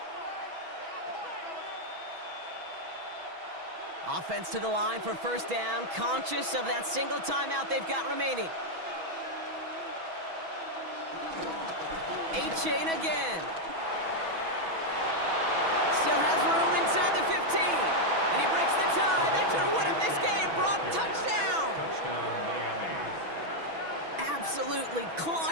Offense to the line for first down, conscious of that single timeout they've got remaining. A-Chain again. Still has room inside the 15. And he breaks the tie. That should have won him this game. Brock, touchdown. Touchdown, Miami. Absolutely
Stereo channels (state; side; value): late; left; 6.1 ms